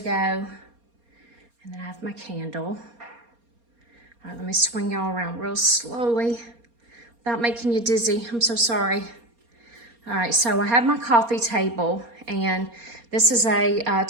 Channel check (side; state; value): left; late; 4.3 ms